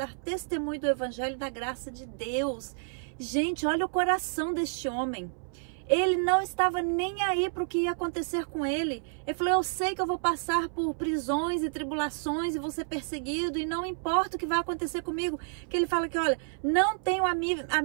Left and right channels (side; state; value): left; silent; 58 dB below the other